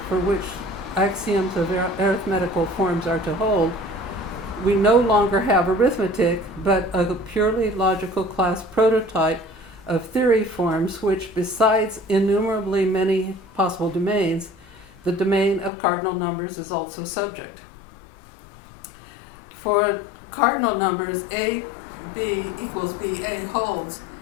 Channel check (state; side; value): drops out; right; at 15.7 s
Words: for which axioms of arithmetical forms are to hold, we no longer have arithmetic, but a purely logical class prototype of theory forms which, besides innumerably many possible domains, the domain of cardinal numbers is also subject. For cardinal numbers, a b equals ba holds.